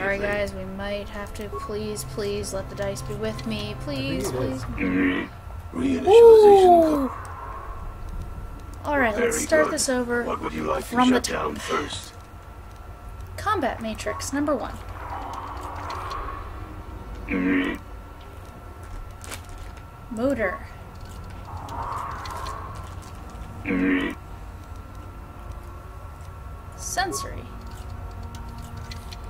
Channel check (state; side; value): identical; both; correlation 1.00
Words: guys, we might have to please let the dice be with me. Please, I think it please. Reinitialization. Alright, let's Very start good. this over What would you like from to the shut down top. first? Combat matrix, number 1. Motor. Sensory.